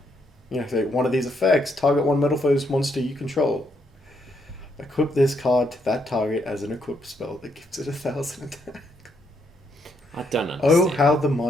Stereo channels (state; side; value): normal; both; correlation 0.75